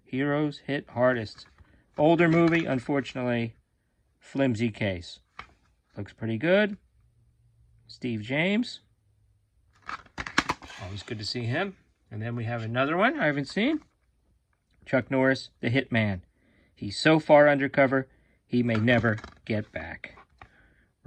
Heroes hit hardest. Older movie, unfortunately, flimsy case. Looks pretty good. Steve James. Always good to see him. And then we have another one I haven't seen. Chuck Norris, the Hitman. He's so far undercover, he may never get back.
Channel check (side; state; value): both; identical; correlation 1.00